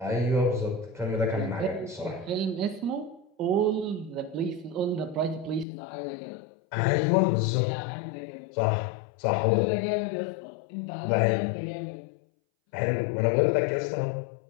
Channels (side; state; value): right; drops out; at 5.7 s